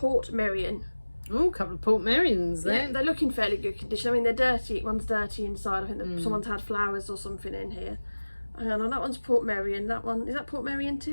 Merion. Oh, a couple of Port Merions Yeah, then. they're looking fairly good condition. I mean, they're dirty. One's dirty inside. I think that someone's had flowers or something in here. Hang on, that one's Port Merion. That one, is that Port Merion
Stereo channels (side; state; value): both; inverted; correlation -1.00